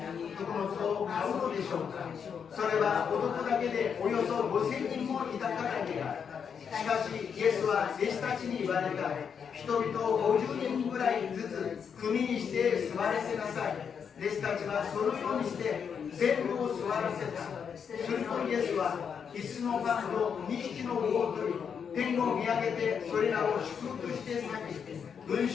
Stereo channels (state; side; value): quieter; right; 7.0 dB